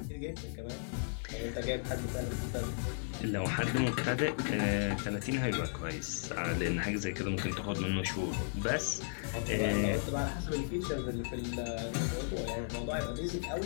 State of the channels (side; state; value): right; silent; 54 dB below the other